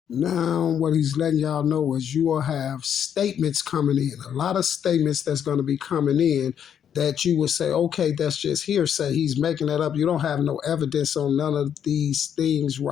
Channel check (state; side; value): quieter; right; 8.8 dB